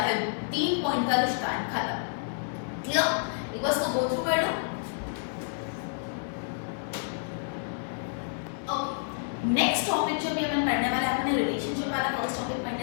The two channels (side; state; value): right; silent; 58 dB below the other